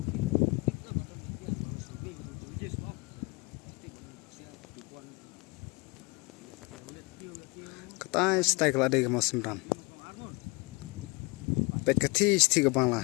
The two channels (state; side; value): quieter; right; 27.6 dB